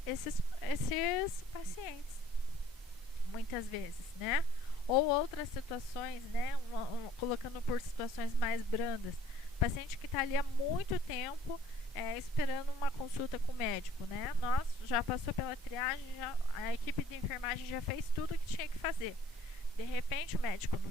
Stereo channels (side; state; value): both; normal; correlation 0.57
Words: esses pacientes, muitas vezes, né? Ou outras situações, né? Colocando por situações mais brandas, paciente que está ali há muito tempo esperando uma consulta com o médico, né? Nós já passou pela triagem, a equipe de enfermagem já fez tudo o que tinha que fazer. De repente o médico